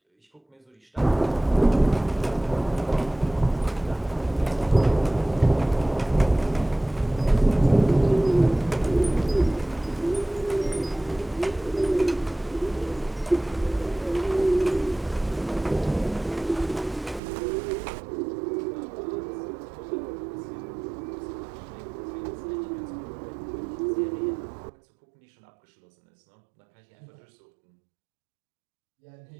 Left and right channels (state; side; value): drops out; left; at 17.2 s